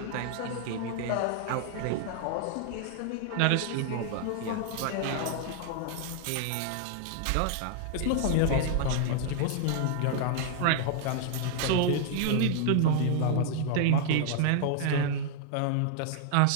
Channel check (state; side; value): different; both; correlation 0.00